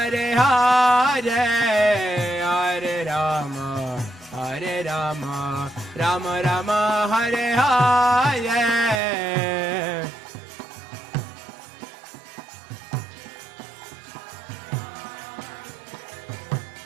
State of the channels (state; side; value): drops out; left; at 9.0 s